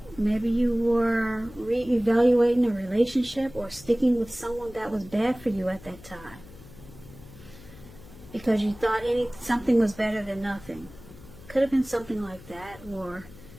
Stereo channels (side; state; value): left; noise; hum, 19 dB below the sound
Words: maybe you were reevaluating a relationship or sticking with someone that was bad for you at that time, because you thought something was better than nothing. Could have been something like that, or